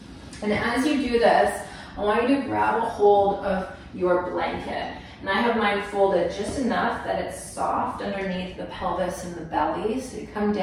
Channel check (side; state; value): both; identical; correlation 1.00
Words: and as you do this, I want you to grab a hold of your blanket. And I have mine folded just enough that it's soft underneath the pelvis and the belly, so you come